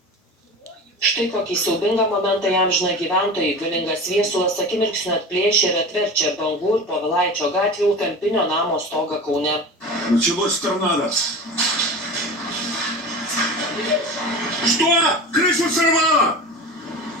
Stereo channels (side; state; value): both; normal; correlation 0.32